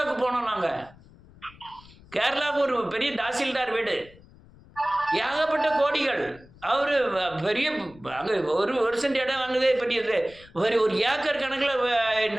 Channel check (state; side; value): noise; left; rumble, 24 dB below the sound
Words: போனோம் நாங்கள். கேரளாவுக்கு ஒரு பெரிய தாசில்தார் வீடு, ஏகப்பட்ட கோடிகள். அவர் பெரிய அங்கே ஒரு சென்ட் இடம் வாங்குதே பெரியது, ஒரு ஏக்கர் கணக்கில்